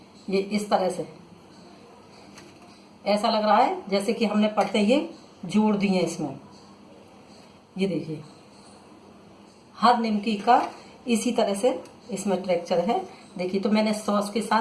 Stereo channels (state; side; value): identical; both; correlation 1.00